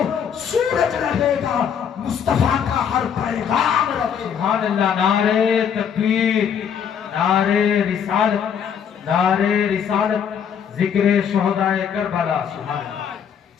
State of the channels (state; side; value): quieter; right; 7.9 dB